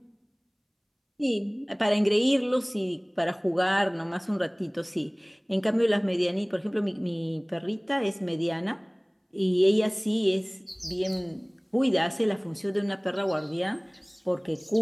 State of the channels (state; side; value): identical; both; correlation 1.00